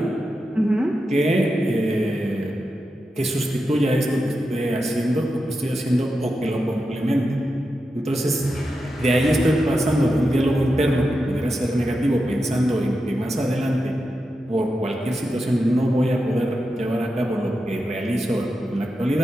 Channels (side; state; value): both; normal; correlation 0.89